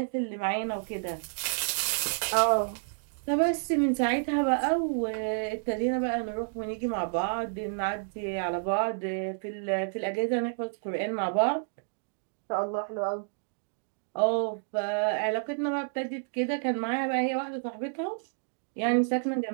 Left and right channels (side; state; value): left; silent; digital silence